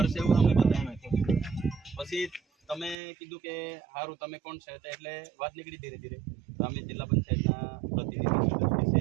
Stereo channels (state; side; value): drops out; left; at 3.0 s